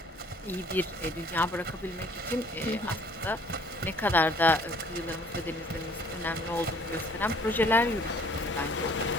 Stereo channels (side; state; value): both; normal; correlation 0.57